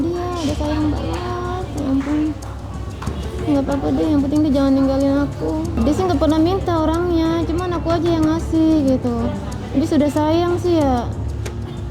dia, udah sayang banget. Ya ampun. Nggak apa-apa deh, yang penting dia jangan ninggalin aku. Dia sih nggak pernah minta orangnya, cuman aku aja yang ngasih gitu. Dia sudah sayang sih ya.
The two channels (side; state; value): both; identical; correlation 1.00